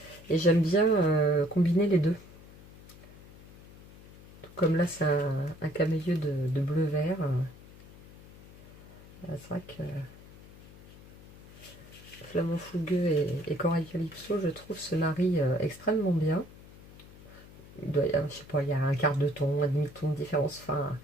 Et j'aime bien combiner les deux. Tout comme là, c'est un camailleux de bleu-vert. C'est vrai que flamant fougueux et corail calypso, je trouve se marient extrêmement bien. Il doit, je sais pas, il y a un quart de ton, un demi-ton de différence. Enfin,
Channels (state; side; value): noise; left; hum, 20 dB below the sound